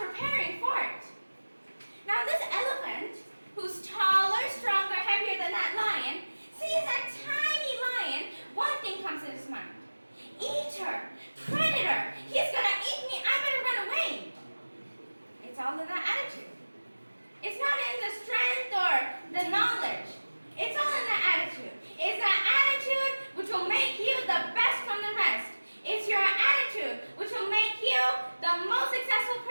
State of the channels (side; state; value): both; inverted; correlation -1.00